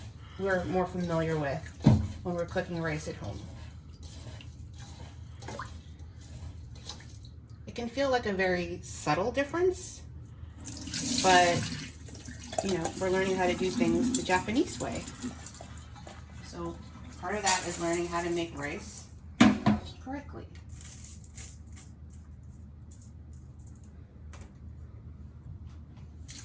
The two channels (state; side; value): identical; both; correlation 1.00